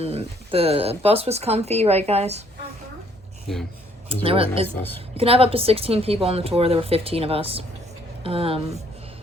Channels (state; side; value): normal; both; correlation 0.65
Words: the bus was comfy, right, guys? Yeah. It was a really nice bus. You can have up to 16 people on the tour. There were 15 of us.